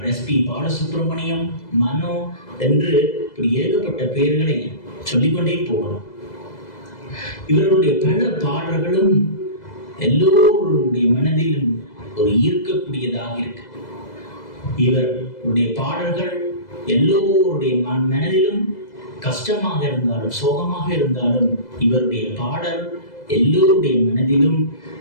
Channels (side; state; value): right; late; 2.0 ms